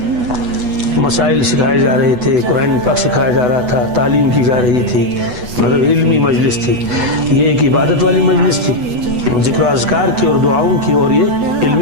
مسائل سکھائے جا رہے تھے، قرآن پاک سکھایا جا رہا تھا، تعلیم کی جا رہی تھی، مطلب علمی مجلس تھی. یہ ایک عبادت والی مجلس تھی، ذکر و اذکار کی اور دعاؤں کی، اور یہ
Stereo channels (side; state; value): left; late; 8.1 ms